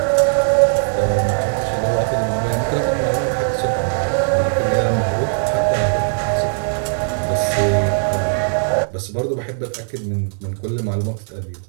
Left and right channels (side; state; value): left; silent; 66 dB below the other